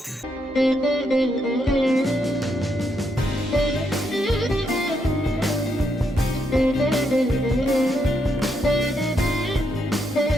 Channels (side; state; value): both; normal; correlation 0.78